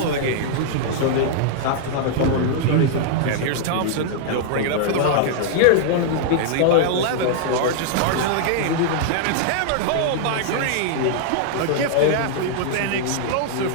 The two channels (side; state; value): both; different; correlation -0.01